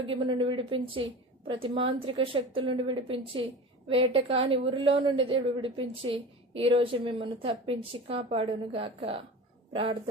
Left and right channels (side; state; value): both; normal; correlation 0.33